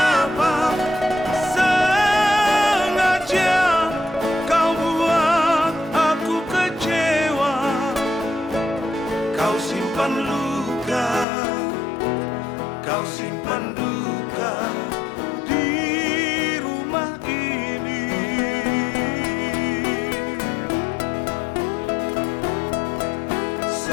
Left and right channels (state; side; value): drops out; right; at 11.2 s